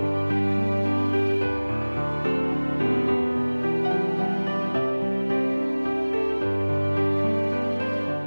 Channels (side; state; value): both; inverted; correlation -1.00